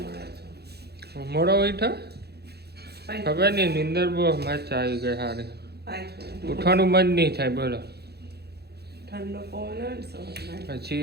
છો. મોડો ઉઠો? ખબર નહીં, નીંદર બહુ મસ્ત આવી ગઈ સારી. ઉઠવાનું મન નહીં થાય બોલો. ઠંડો પવન હોય ને સવારમાં.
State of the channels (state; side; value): late; left; 0.47 ms